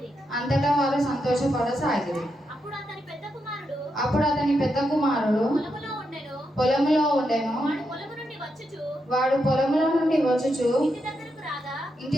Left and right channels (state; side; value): normal; both; correlation 0.84